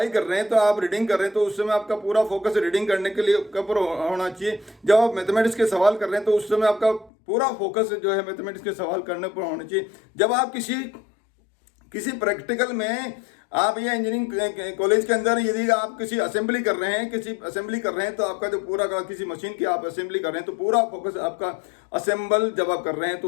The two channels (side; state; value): right; drops out; at 7.1 s